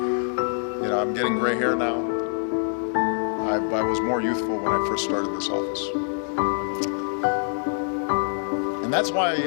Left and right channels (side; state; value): right; silent; digital silence